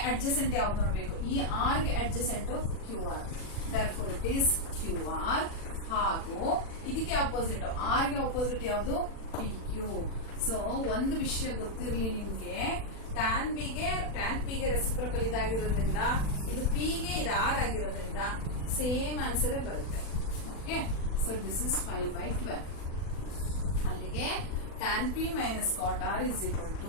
ಅಡ್ಜಸೆಂಟ್ ಯಾವ್ದು ನೋಡ್ಬೇಕು, ಈ ಆರ್ ಗೆ adjacent QR. therefore it is QR. ಹಾಗೂ ಇದಕ್ಕೆ ಅಪೋಸಿಟ್, ಆರ್ ಗೆ ಅಪೋಸಿಟ್ ಯಾವುದು, PQ. ಸೊ ಒಂದು ವಿಷಯ ಗೊತ್ತಿರ್ಲಿ ನಿಮ್ಗೆ, tan P ಗೆ ರೆಸಿಪ್ರೋಕಲ್ ಇದಾಗಿರೋದ್ರಿಂದ, ಇದು P ಗೆ ಇದು R ಆಗಿರೋದ್ರಿಂದ ಸೇಮ್ ಆನ್ಸರ್ ಬರುತ್ತೆ. Okay, so this is 5/12. ಅಲ್ಲಿಗೆ tan P minus cot R is equal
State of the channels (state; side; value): late; right; 40 ms